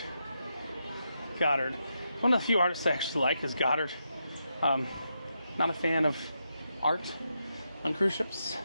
One of the few artists I actually like is Goddard. Not a fan of art on cruise ships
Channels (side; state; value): both; inverted; correlation -0.84